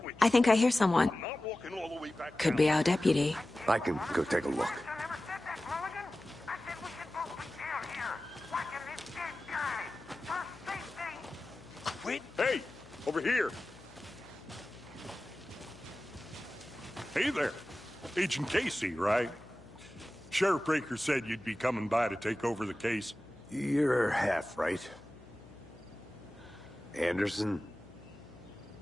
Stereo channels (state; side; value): noise; left; hum, 21 dB below the sound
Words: I think I hear someone. I'm not walking all the way back Could down. be our deputy. I can go take a look. I never said that, Mulligan. I said we should both be down here, watching this dead guy. For safety. Quit. Hey, over here. Hey there. Agent Casey, right? Sheriff Breaker said you'd be coming by to take over the case. You're half right. Anderson?